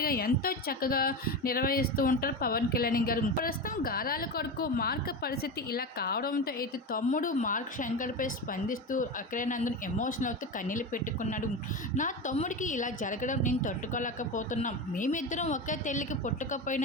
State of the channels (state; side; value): normal; both; correlation 0.21